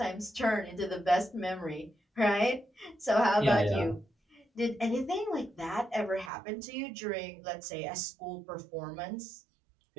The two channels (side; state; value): left; drops out; at 6.3 s